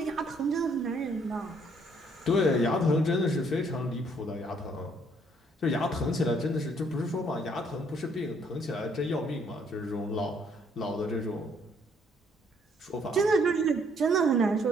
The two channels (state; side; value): normal; both; correlation 0.66